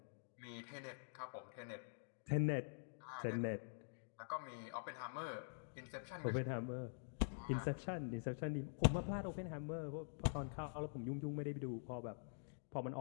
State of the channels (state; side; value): silent; right; digital silence